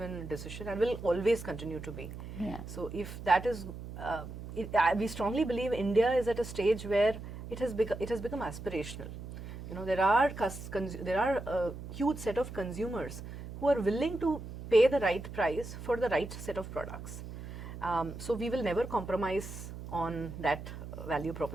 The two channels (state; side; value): noise; right; hum, 11 dB below the sound